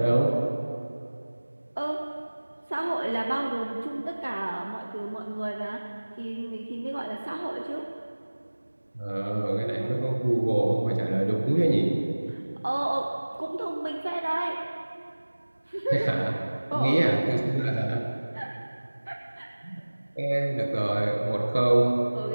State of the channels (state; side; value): inverted; both; correlation -1.00